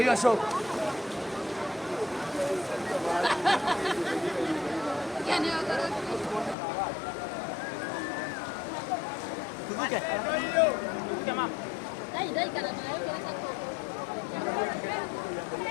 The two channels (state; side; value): drops out; right; at 6.6 s